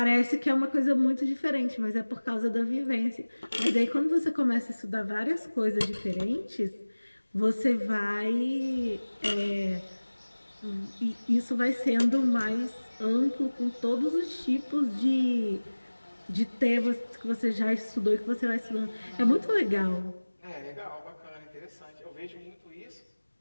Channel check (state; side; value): inverted; both; correlation -1.00